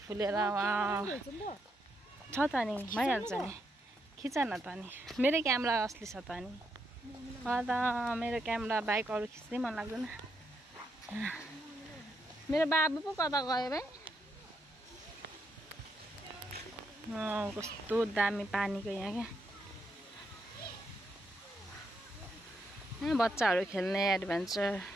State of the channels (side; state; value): both; normal; correlation 0.80